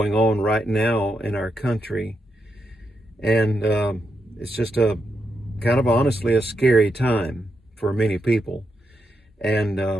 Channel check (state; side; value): normal; both; correlation 0.84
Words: on right now in our country. And it's just kind of honestly a scary time for many people,